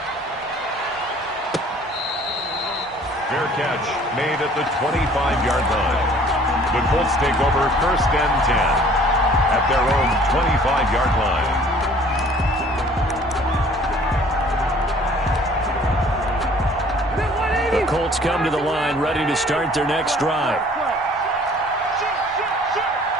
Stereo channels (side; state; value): both; normal; correlation 0.53